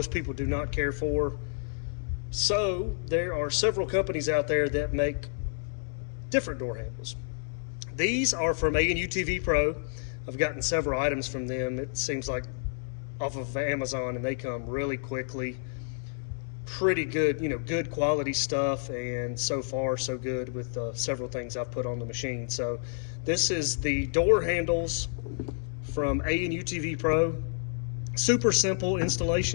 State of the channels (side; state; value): right; silent; digital silence